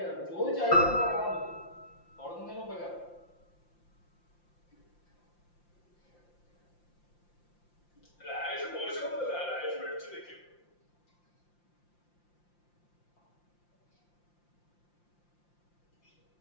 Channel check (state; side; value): late; right; 5.7 ms